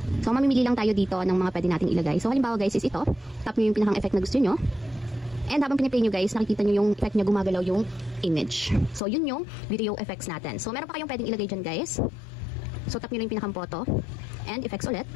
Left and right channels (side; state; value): right; drops out; at 9.0 s